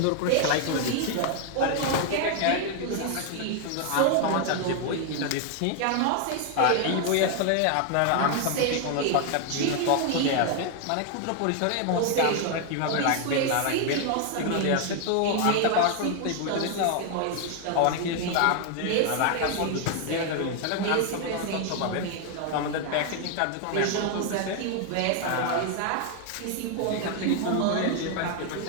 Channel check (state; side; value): different; both; correlation 0.00